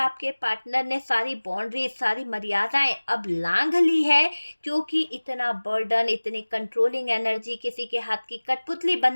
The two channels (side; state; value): both; inverted; correlation -1.00